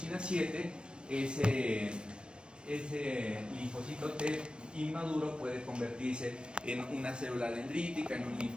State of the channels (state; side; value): late; left; 0.055 ms